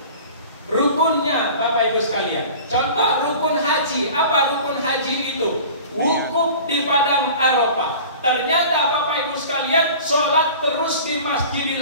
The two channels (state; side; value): inverted; both; correlation -0.41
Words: Rukunnya Bapak Ibu sekalian. Contoh rukun haji. Apa rukun haji itu? Wukuf di padang Arafah. Ternyata Bapak Ibu sekalian sholat terus di